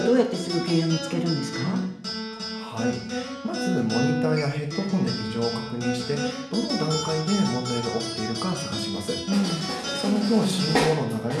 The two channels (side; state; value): both; identical; correlation 1.00